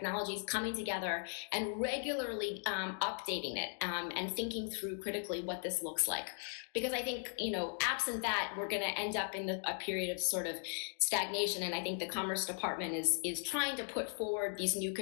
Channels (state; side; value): silent; right; 52 dB below the other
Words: coming together and regularly updating it and thinking through critically what this looks like. Because I think, absent that, we're going to end up in a period of sort of stagnation. And I think the Commerce Department is trying to put forward these new